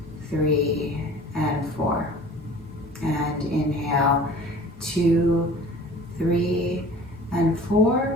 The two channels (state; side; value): normal; both; correlation 0.44